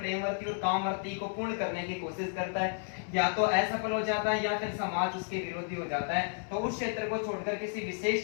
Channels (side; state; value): right; silent; 56 dB below the other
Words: और कामवर्ती को पूर्ण करने की कोशिश करता है, या तो असफल हो जाता है या फिर समाज उसके विरोधी हो जाता है, तो उस क्षेत्र को छोड़कर किसी विशेष